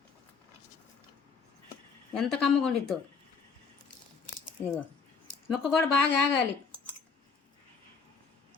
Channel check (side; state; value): right; quieter; 5.3 dB